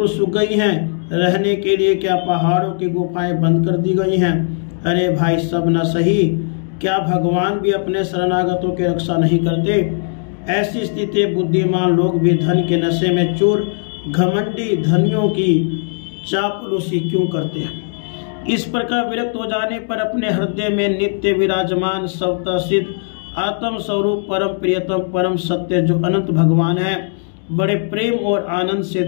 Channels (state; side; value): silent; right; digital silence